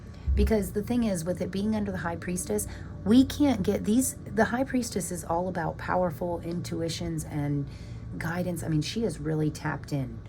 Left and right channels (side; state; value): both; identical; correlation 1.00